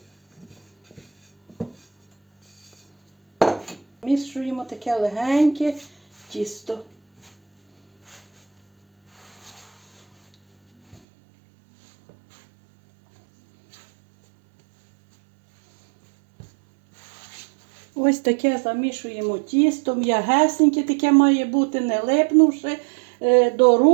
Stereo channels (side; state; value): left; drops out; at 11.0 s